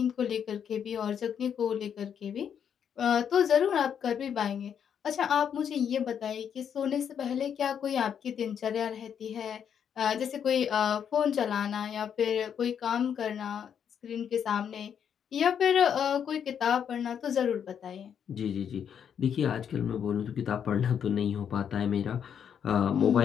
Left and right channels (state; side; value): quieter; right; 8.2 dB